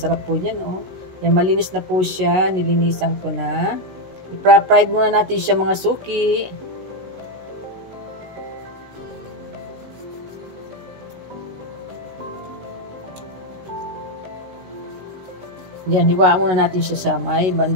po yan, oh. Yan, malinis na po siya. Nilinisan ko na. I-fried muna natin siya mga suki. Yan, hiwaan muna natin siya sa may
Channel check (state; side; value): late; left; 16 ms